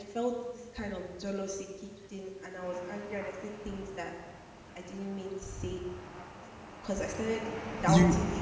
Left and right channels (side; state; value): both; identical; correlation 1.00